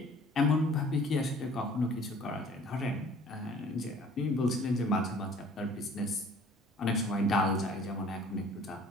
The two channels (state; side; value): normal; both; correlation 0.51